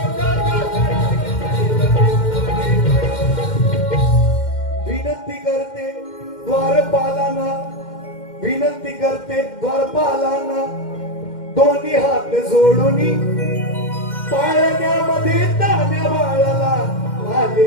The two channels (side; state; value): right; late; 2.1 ms